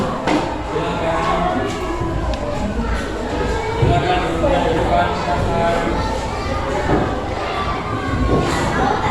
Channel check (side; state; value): both; identical; correlation 1.00